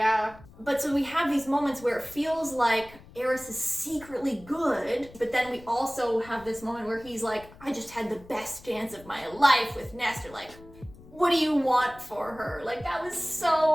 But so we have these moments where it feels like Eris is secretly good, but then we also have this moment where he's like, I just had the best dance of my life with Nesta. Like, what do you want for her? Like, that was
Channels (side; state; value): left; noise; rumble, 21 dB below the sound